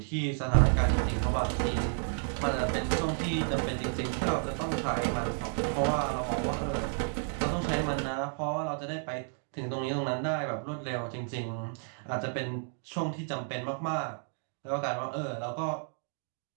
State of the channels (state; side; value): silent; left; 57 dB below the other